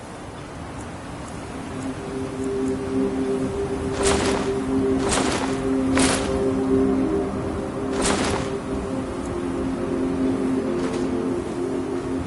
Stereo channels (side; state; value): both; identical; correlation 1.00